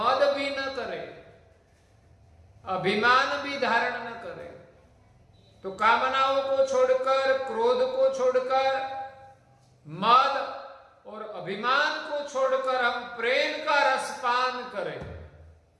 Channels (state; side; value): identical; both; correlation 1.00